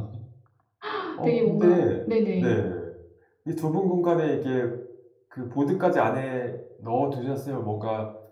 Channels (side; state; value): both; identical; correlation 1.00